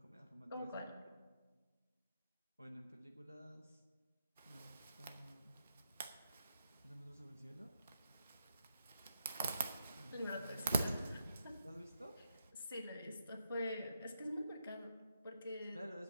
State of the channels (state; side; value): inverted; both; correlation -0.81